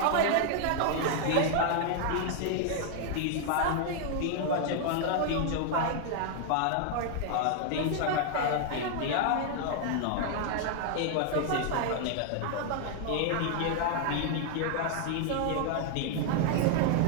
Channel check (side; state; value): both; different; correlation 0.00